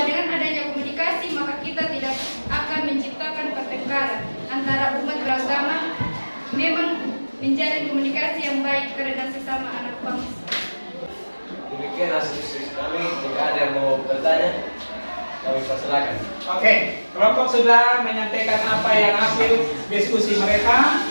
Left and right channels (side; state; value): both; inverted; correlation -1.00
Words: dengan adanya komunikasi maka kita tidak akan menciptakan pertengkaran antara umat beragama. Memang menjalin komunikasi yang baik karena sesama anak bangsa. Demikian hasil diskusi kami. Jika ada yang mau bertanya, kami persilakan. Oke, kelompok sudah menyampaikan apa yang hasil diskusi mereka.